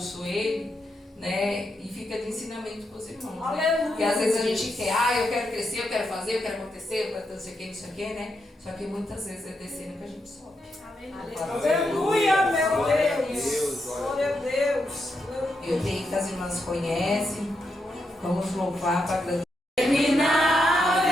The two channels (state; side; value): normal; both; correlation 0.83